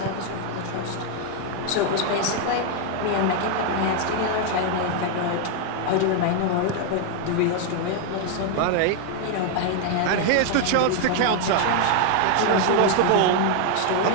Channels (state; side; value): different; both; correlation 0.00